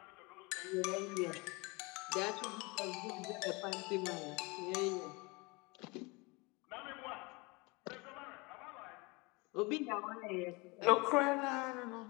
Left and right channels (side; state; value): right; quieter; 26.7 dB